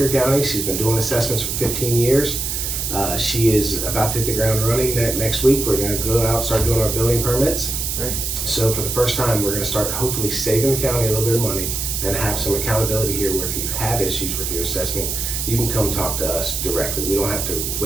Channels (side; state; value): right; noise; hiss, 2 dB below the sound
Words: County. She's been doing assessments for 15 years. She is about to hit the ground running next week. We're going to go out and start doing our building permits. Great. So for the first time, we're going to start hopefully saving the county a little bit of money and have some accountability here where if you have issues with your assessment, you can come talk to us directly. We don't have to